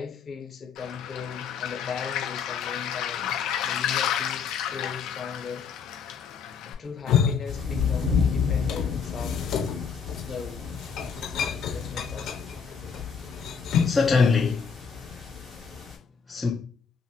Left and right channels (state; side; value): quieter; right; 6.2 dB